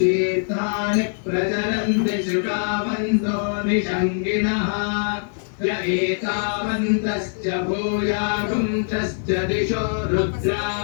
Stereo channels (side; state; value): right; silent; 64 dB below the other